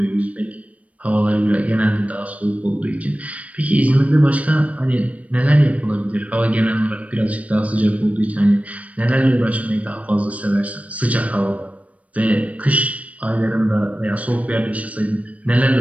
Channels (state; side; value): late; left; 0.067 ms